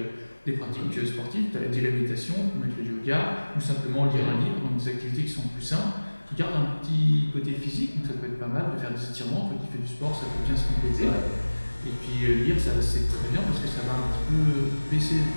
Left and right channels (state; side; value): inverted; both; correlation -1.00